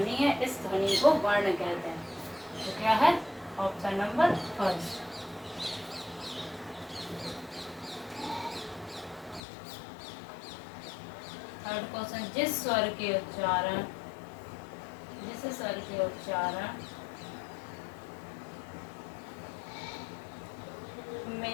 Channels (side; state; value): right; drops out; at 9.4 s